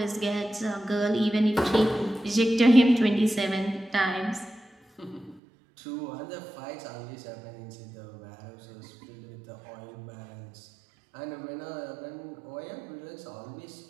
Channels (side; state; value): left; drops out; at 5.4 s